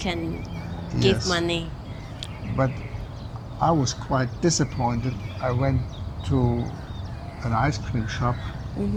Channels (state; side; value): identical; both; correlation 1.00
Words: give Yes. money. But I was quite disappointed. I went to an ice cream shop